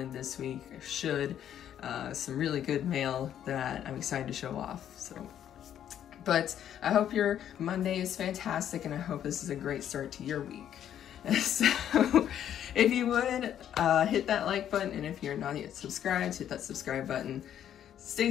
this week. I should. Some really good mail that I'm excited to show off. So. But I hope your Monday is fantastic, and I hope this is a great start to your week. So if you would, hit that like button, and if you're not yet subscribed, hit that subscribe button. Stay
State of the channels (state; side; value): quieter; right; 10.2 dB